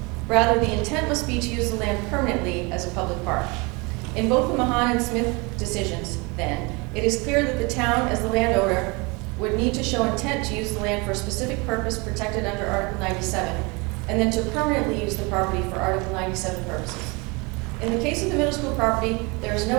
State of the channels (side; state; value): left; quieter; 27.8 dB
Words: Rather, the intent must be to use the land permanently as a public park. In both the Mahan and Smith decisions, then, it is clear that the town, as the landowner, would need to show intent to use the land for a specific purpose protected under Article 97, and then to permanently use the property for Article 97 purposes. In the case of the middle school property, there is